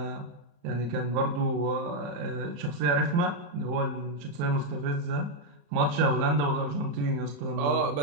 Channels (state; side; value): late; left; 34 ms